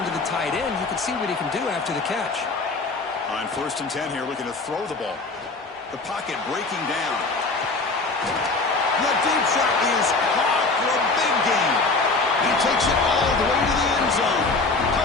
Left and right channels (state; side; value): quieter; right; 3.7 dB